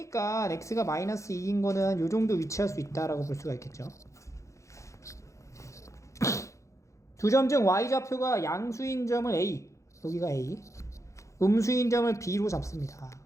x가 마이너스 2인 거는 요 정도 위치할 수 있다라고 볼 수가 있겠죠. 두 점 중 y좌표가 양수인 점을 a, 여기가 a, 음수인 점을 b로 잡습니다.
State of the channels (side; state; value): right; late; 0.15 ms